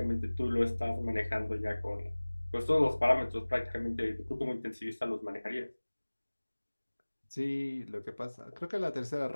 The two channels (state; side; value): inverted; both; correlation -1.00